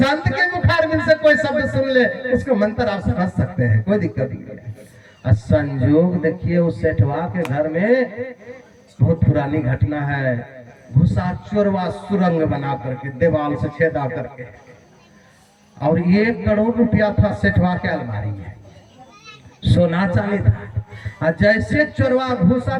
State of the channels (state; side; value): identical; both; correlation 1.00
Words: के मुखारबिंद से कोई शब्द सुन ले उसको मंत्र आप समझ सकते हैं, कोई दिक्कत नहीं है। संयोग देखिए उस सेठवा के घर में बहुत पुरानी घटना है। घुसा चोरवा सुरंग बना करके दीवार से छेदा करके, और 1 करोड़ रुपया था सेठवा के अलमारी में। सोना चांदी था। और जैसे चोरवा घुसा